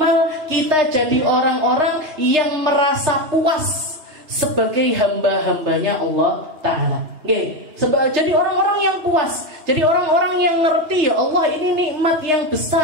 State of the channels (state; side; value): late; left; 3.3 ms